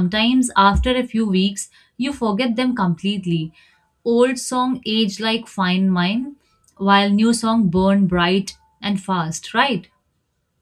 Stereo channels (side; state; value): both; identical; correlation 1.00